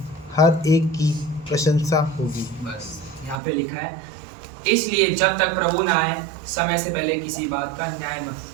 हर एक की प्रशंसा होगी। बस यहाँ पे लिखा है, इसलिए जब तक प्रभु न आए समय से पहले किसी बात का न्याय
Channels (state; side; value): drops out; left; at 3.4 s